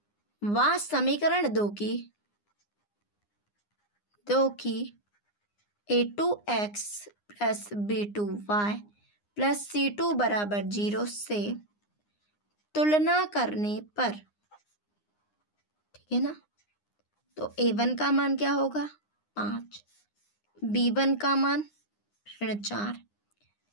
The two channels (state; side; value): late; right; 9.7 ms